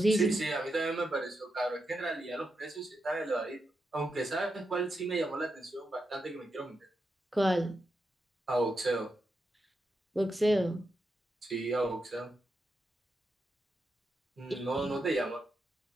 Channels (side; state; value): both; normal; correlation 0.86